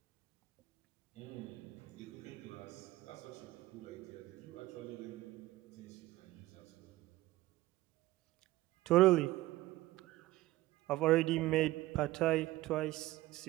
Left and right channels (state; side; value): quieter; left; 17.2 dB